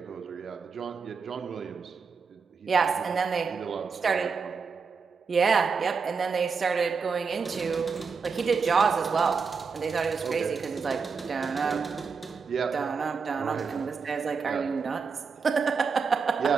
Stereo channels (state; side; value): quieter; left; 5.4 dB